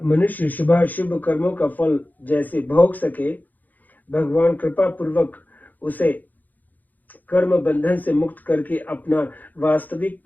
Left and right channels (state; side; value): late; right; 0.083 ms